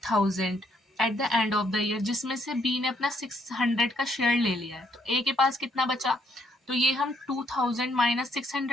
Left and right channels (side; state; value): both; normal; correlation 0.71